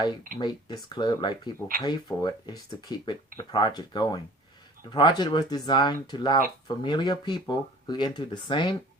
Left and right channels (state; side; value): normal; both; correlation 0.47